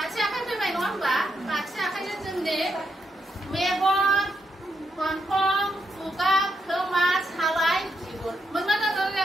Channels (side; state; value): both; normal; correlation 0.80